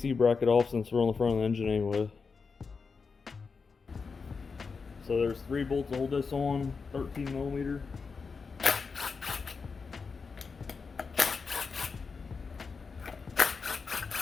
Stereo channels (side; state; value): right; quieter; 5.0 dB